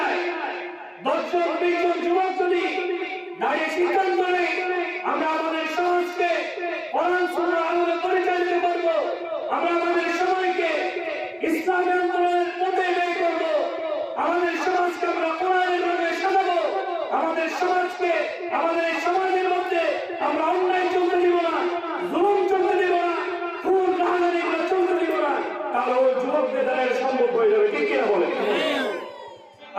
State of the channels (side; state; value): both; identical; correlation 1.00